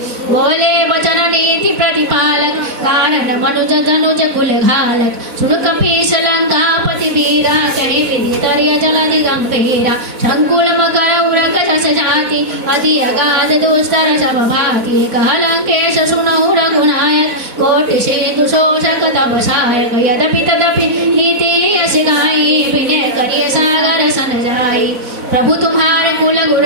बोले वचन नीति प्रतिपालक, कारण मनुज धनुज कुल घालक। सुन कपीस लंकापति वीरा, कहि विधि तर्य जलधि गंभीरा। संकुल मकर उरक जस जाति, अति अगाध दुस्तर सब भाति। कह लंकेश सुनहु रघुनायक, कोटि सिंधु शोषक तब सहायक। यद्यपि तदपि नीति यश गाई, विनय करिय सागर सन जाई। प्रभु तुम्हारे कुल गुर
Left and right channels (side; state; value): left; late; 4.0 ms